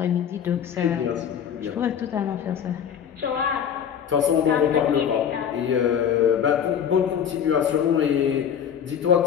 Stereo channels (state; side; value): quieter; right; 8.4 dB